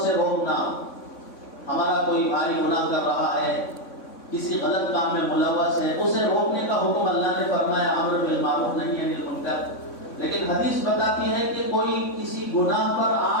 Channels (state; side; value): late; right; 3.6 ms